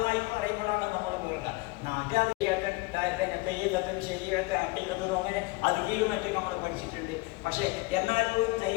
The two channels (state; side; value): quieter; right; 24.6 dB